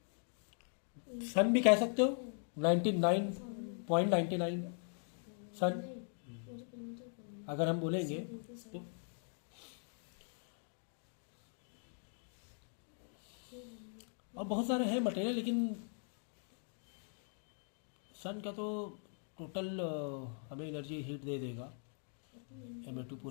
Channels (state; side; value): silent; right; 51 dB below the other